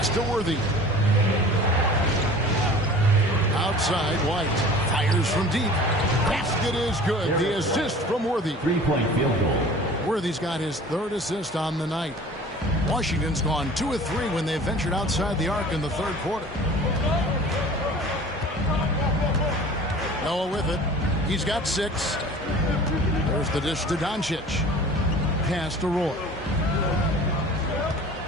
to Worthy. Outside, White fires from deep. Basket is good. The assist from Worthy. 3-point field goal. Worthy's got his 3rd assist on the night. Washington's gone 2 of 3 when they ventured outside the arc in the 3rd quarter. Noah with it. He's got 6. There's the dish to Doncic. Pass to Roy.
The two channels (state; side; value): normal; both; correlation 0.43